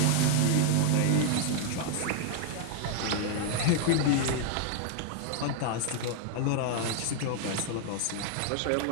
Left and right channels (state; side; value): different; both; correlation 0.00